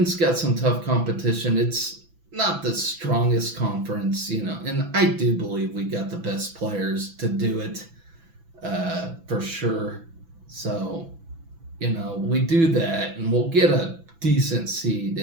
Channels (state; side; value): late; left; 6.0 ms